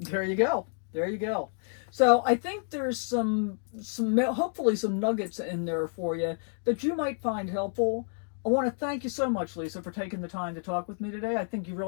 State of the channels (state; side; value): silent; right; 58 dB below the other